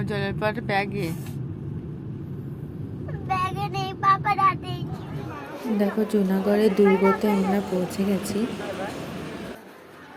জলের পর ব্যাগে নেই, বাবার হাতে। দেখো জুনাগড়ের দুর্গতে আমরা পৌঁছে গেছি।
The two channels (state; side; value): identical; both; correlation 1.00